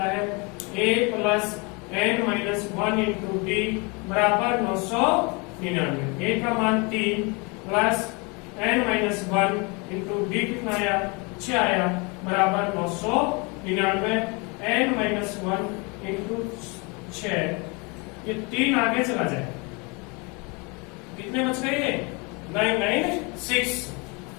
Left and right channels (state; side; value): quieter; right; 29.7 dB